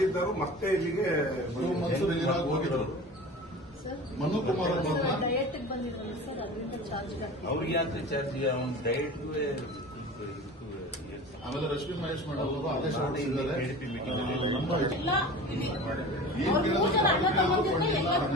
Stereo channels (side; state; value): both; normal; correlation 0.36